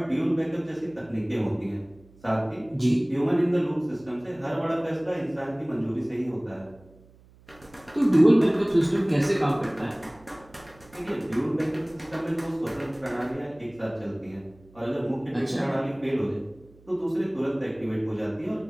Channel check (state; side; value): noise; right; hum, 26 dB below the sound